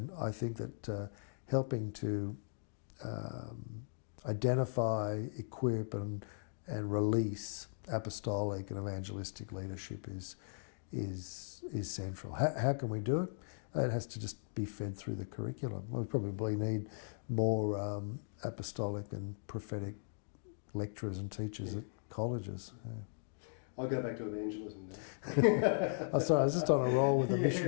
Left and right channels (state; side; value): silent; right; digital silence